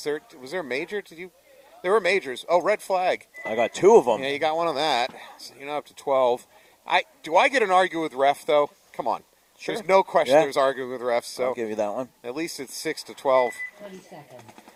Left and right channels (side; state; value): both; identical; correlation 1.00